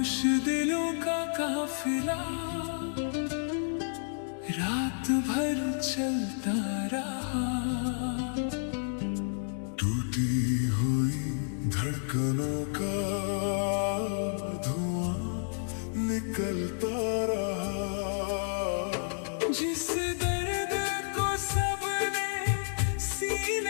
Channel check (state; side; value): silent; right; digital silence